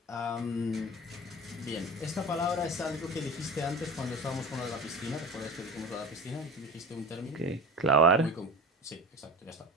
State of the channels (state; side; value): normal; both; correlation 0.33